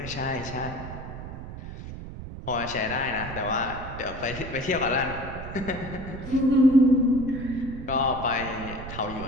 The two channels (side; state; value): right; noise; rumble, 10 dB below the sound